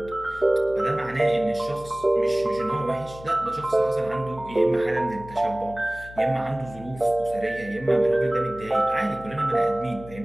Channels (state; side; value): noise; left; hum, 17 dB below the sound